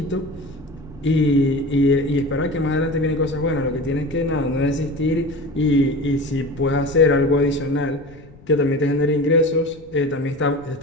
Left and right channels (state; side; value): noise; left; rumble, 22 dB below the sound